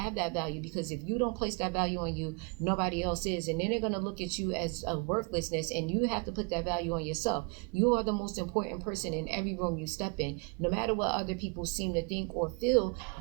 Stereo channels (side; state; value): left; quieter; 32.9 dB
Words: that value, because if you don't place that value on you, nobody else is. And then they're going to look at you as a worthlessness, and you have to put that value on yourself. You are the most important person in every room you step in. No matter what other people seem to think or feel,